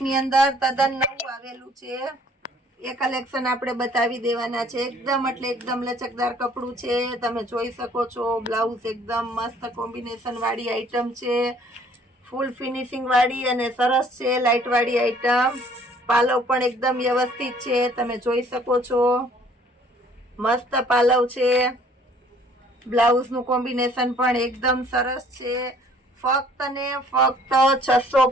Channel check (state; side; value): normal; both; correlation 0.57